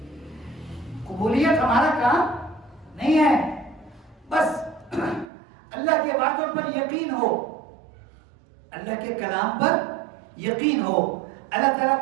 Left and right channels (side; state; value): left; drops out; at 5.3 s